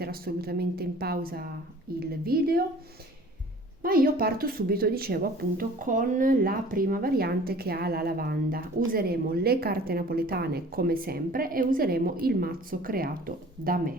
assolutamente in pausa il video, ma io parto subito, dicevo appunto, con la prima variante che ha la lavanda. Useremo le carte napoletane come sempre e useremo il mazzo creato da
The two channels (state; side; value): normal; both; correlation 0.48